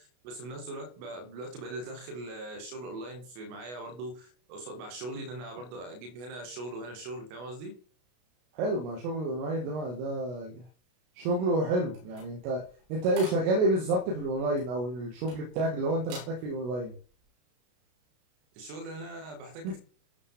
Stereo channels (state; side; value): late; left; 32 ms